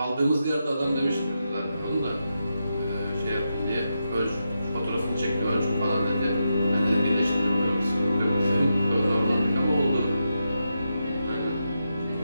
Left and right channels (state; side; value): inverted; both; correlation -0.86